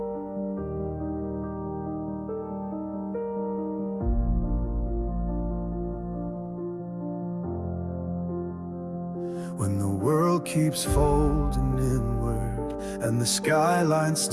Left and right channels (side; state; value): both; identical; correlation 1.00